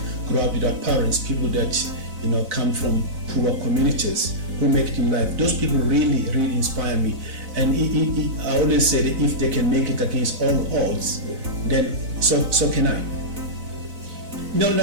grow up without parents, people that, come from poor communities who make it in life, those people really, really inspire me. And I always say that if they can make it against all odds, then so can I.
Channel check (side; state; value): left; late; 4.0 ms